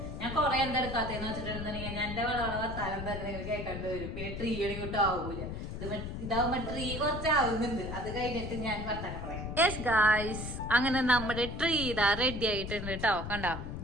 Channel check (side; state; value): left; noise; rumble, 6 dB below the sound